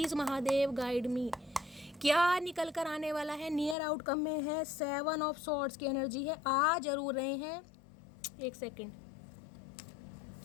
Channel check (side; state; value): right; drops out; at 3.8 s